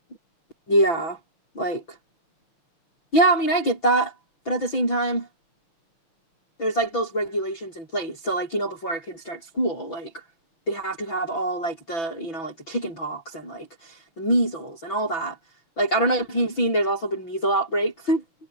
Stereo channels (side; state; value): right; late; 6.0 ms